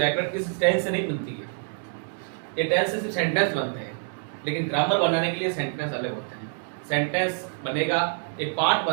किस टेंस से नहीं बनती है। ये टेंस से सिर्फ सेंटेंस बनते हैं, लेकिन ग्रामर बनाने के लिए सेंटेंस अलग होते हैं। सेंटेंस बनेगा, एक पार्ट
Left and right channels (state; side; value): silent; left; 61 dB below the other